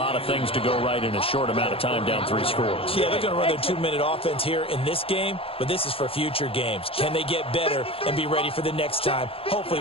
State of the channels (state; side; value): late; right; 0.27 ms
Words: of things to go right in a short amount of time down 3 scores. Yeah, they're going to run their 2-minute offense here in this game, but this is for future games. Can they get better and be ready for the next time,